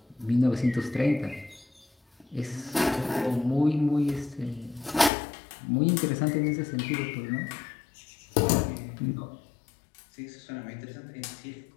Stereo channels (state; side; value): drops out; right; at 5.1 s